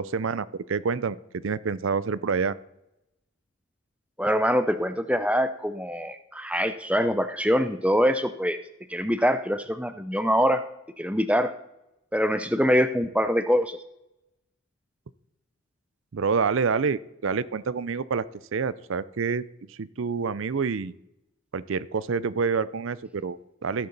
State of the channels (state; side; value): normal; both; correlation 0.51